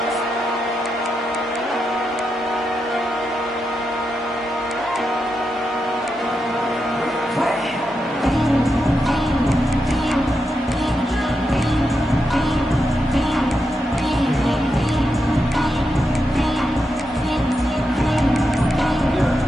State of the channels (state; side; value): normal; both; correlation 0.86